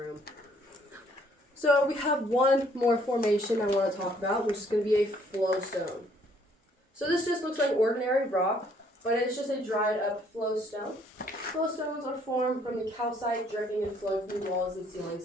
So we have one more formation I want to talk about, which is going to be a flowstone. So this just looks like ordinary rock, but it's just a dried up flowstone. Flowstones are formed from the calcite dripping and flowing through walls and ceilings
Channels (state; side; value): normal; both; correlation 0.64